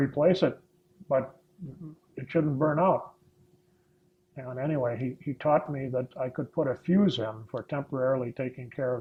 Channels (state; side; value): identical; both; correlation 1.00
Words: it, but it shouldn't burn out. And anyway, he taught me that I could put a fuse in for temporarily taking care